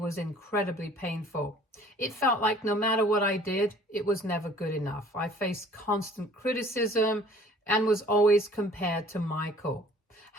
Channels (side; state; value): both; normal; correlation 0.52